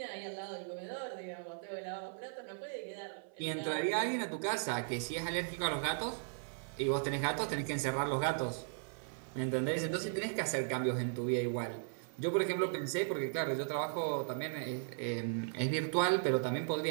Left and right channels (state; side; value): silent; left; 53 dB below the other